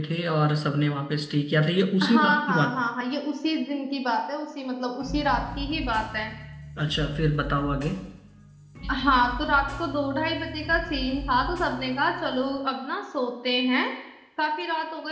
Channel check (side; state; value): both; identical; correlation 1.00